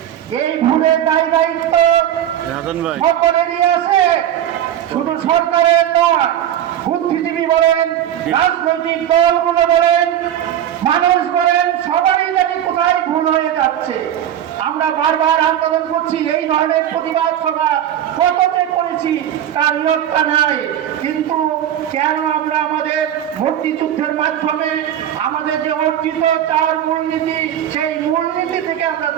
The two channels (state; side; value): quieter; left; 10.9 dB